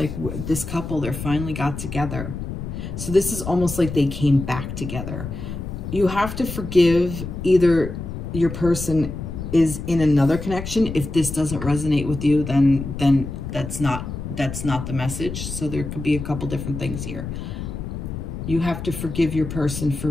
this couple, they're finally got together. So this is almost like they came back together. You have to forgive either your person is in another connection. If this doesn't resonate with you, then that's not the message. So there could be a couple different things here. You have to forgive your person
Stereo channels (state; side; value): noise; left; rumble, 7 dB below the sound